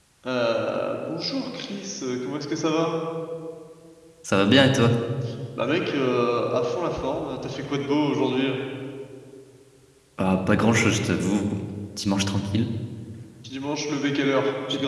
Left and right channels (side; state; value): both; identical; correlation 1.00